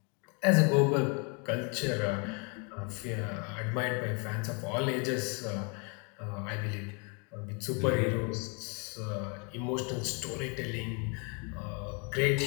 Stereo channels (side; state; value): right; quieter; 34.5 dB